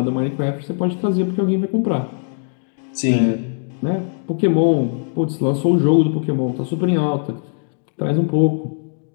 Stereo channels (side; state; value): right; silent; 59 dB below the other